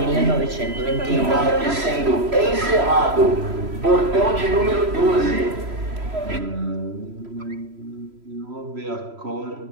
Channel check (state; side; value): late; left; 3.1 ms